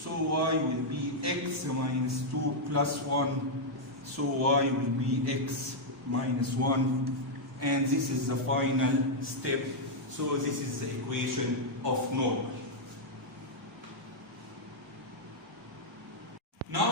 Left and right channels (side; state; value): both; normal; correlation -0.04